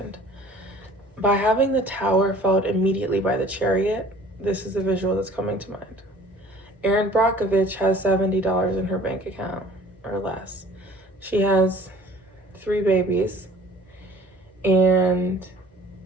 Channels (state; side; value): normal; both; correlation 0.50